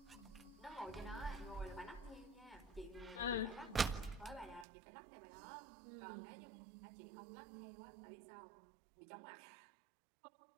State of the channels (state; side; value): drops out; left; at 4.7 s